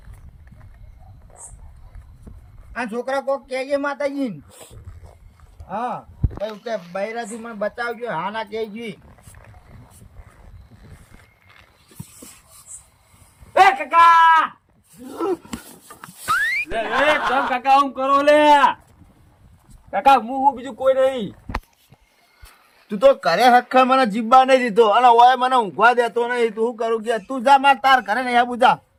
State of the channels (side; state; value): both; identical; correlation 1.00